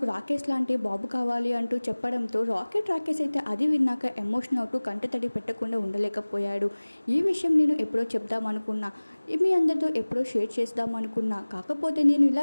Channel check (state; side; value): inverted; both; correlation -1.00